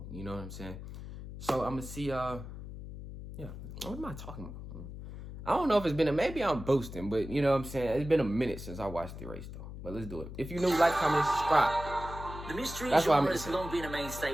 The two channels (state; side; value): noise; left; hum, 11 dB below the sound